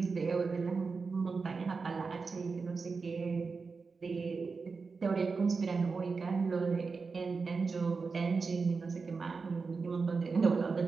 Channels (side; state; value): left; quieter; 4.6 dB